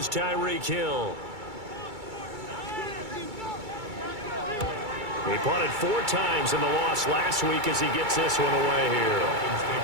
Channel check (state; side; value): late; left; 2.3 ms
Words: Tyreek Hill. He punted 4 times in the loss last week as he gets this one away here. Dolphins